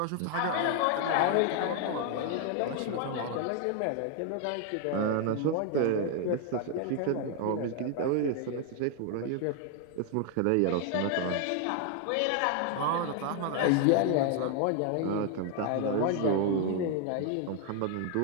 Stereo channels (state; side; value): different; both; correlation 0.00